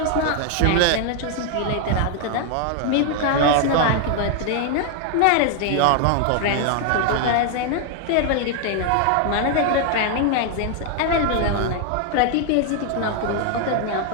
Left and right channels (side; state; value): both; different; correlation 0.00